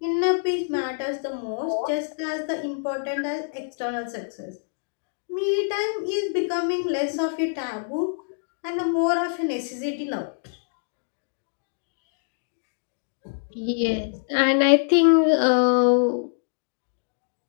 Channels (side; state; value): right; silent; digital silence